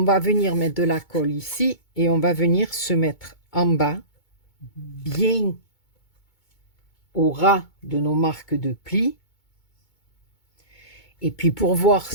venir mettre de la colle ici et on va venir se mettre en bas, bien au ras de nos marques de plis. Et puis pour voir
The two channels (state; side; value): late; right; 2.2 ms